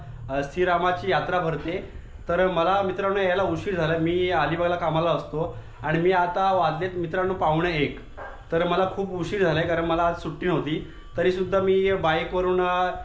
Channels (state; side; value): identical; both; correlation 1.00